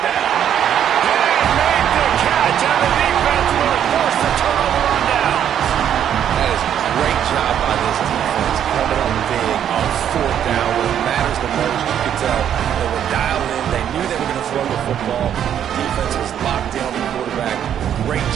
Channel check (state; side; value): quieter; left; 9.6 dB